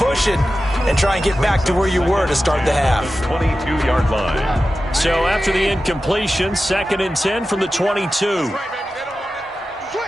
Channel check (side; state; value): both; normal; correlation 0.93